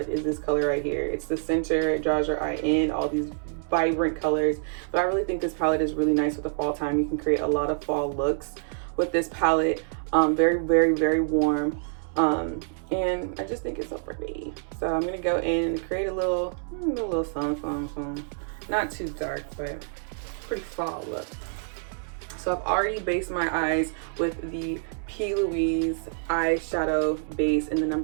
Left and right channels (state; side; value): silent; left; 60 dB below the other